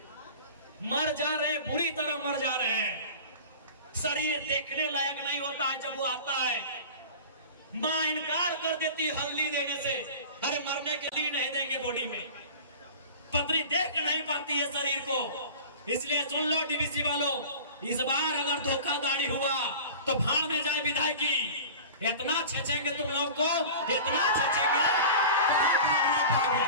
मर जा रहे, बुरी तरह मर जा रहे हैं। शरीर देखने लायक नहीं होता है जब वो आता है, मां इनकार कर देती हल्दी देने से, अरे मरने के लिए नहीं देंगे बॉडी में, पतरी देख नहीं पाती है शरीर को। इसलिए सुन लो डीवीसी वालों, इस बार अगर धोखाधड़ी हुआ तो भाड़ में जाए विधायकी, इतना छेचेंगे तुम लोग को, इतना छेचेंगे।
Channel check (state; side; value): inverted; both; correlation -0.37